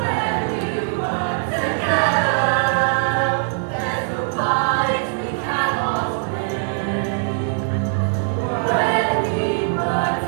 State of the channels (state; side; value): silent; left; digital silence